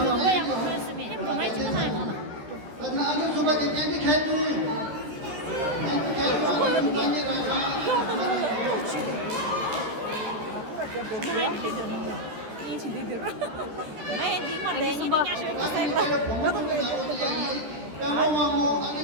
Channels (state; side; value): late; left; 13 ms